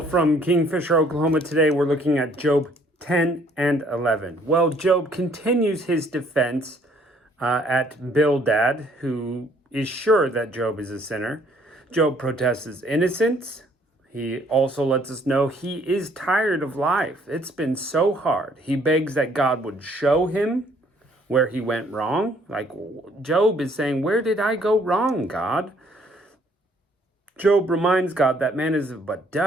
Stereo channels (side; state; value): both; normal; correlation 0.62